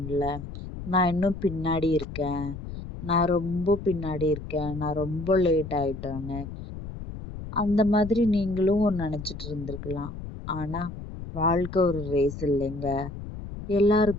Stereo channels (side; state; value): left; noise; rumble, 10 dB below the sound